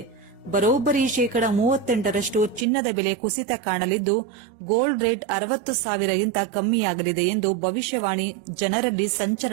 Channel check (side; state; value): left; drops out; at 2.7 s